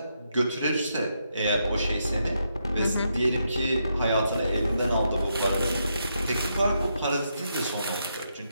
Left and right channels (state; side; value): inverted; both; correlation -0.81